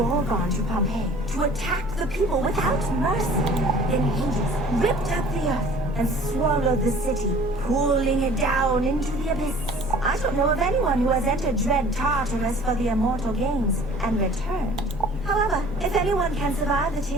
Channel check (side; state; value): both; normal; correlation 0.49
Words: to Pompeii to attack the people without mercy. Then Hades ripped up the earth and swallowed the city, pulling it down into the abyss. I don't know of anyone who has entered dread Tartarus for the immortal games and returned. However, if anyone can survive the